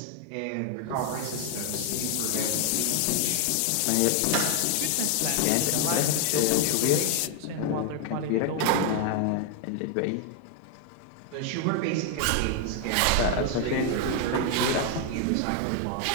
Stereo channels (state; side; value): different; both; correlation 0.00